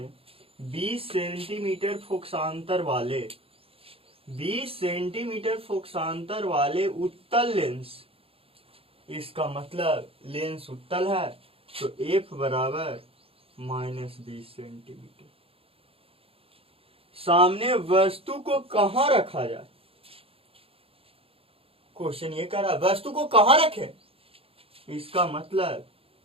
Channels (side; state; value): left; late; 0.27 ms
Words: 20 सेंटीमीटर फोकसांतर वाले 20 सेंटीमीटर फोकसांतर वाले उत्तल लेंस, इसका मतलब लेंस उत्तल है तो F बराबर -20 सेंटीमीटर। सामने वस्तु को कहां रखा जाए? क्वेश्चन ये कह रहा है वस्तु को कहां रखे, इसका मतलब